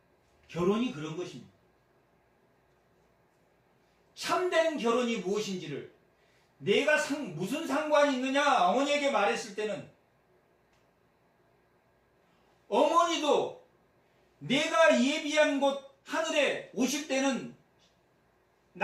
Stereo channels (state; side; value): identical; both; correlation 1.00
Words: 결혼이 그런 것입니다. 참된 결혼이 무엇인지를 내가 무슨 상관이 있느냐 어머니에게 말했을 때는 어머니도 내가 예비한 곳 하늘에 오실 때는